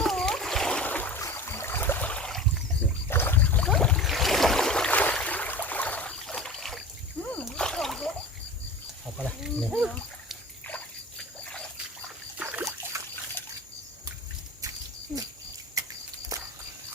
học qua đây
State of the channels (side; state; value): both; normal; correlation 0.35